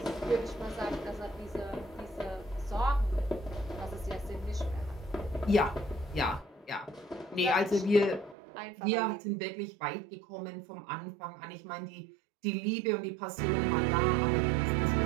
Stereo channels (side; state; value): left; drops out; at 8.3 s